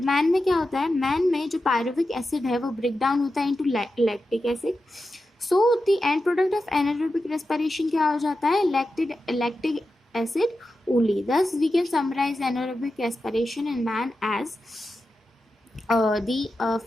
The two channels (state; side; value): normal; both; correlation 0.91